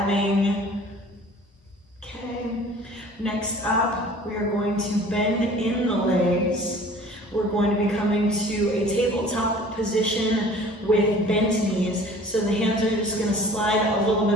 Okay, next up, we are going to bend in the legs. We're going to be coming to a tabletop position with bent knees. So the hands are just going to slide a little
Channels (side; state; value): both; normal; correlation 0.47